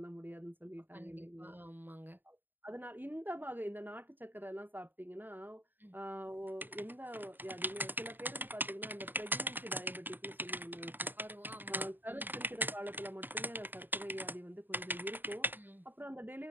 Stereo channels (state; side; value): late; left; 0.092 ms